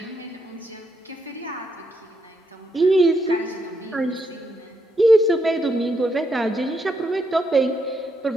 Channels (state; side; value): normal; both; correlation 0.79